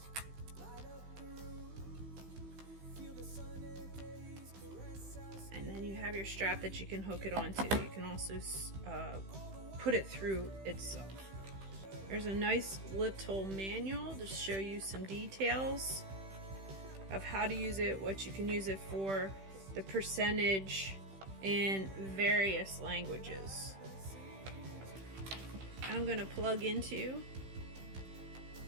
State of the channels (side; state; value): left; late; 15 ms